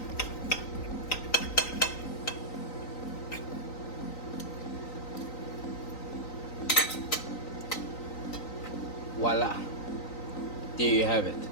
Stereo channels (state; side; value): late; right; 3.9 ms